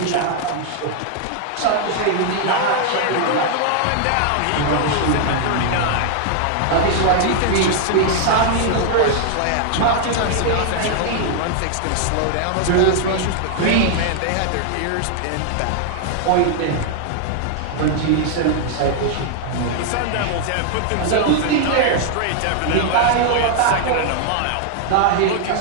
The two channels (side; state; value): both; different; correlation 0.00